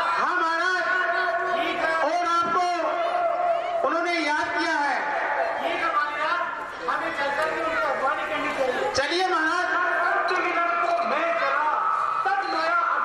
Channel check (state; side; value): identical; both; correlation 1.00